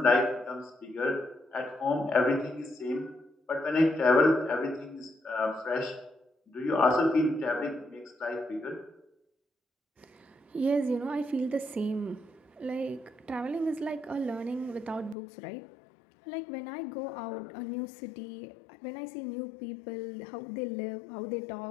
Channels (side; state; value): right; drops out; at 15.2 s